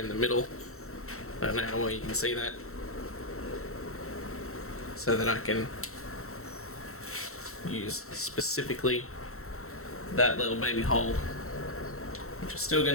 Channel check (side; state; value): right; late; 0.63 ms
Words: the middle. I don't know how well you can see that. So that I can use specifically that little baby hole, which is still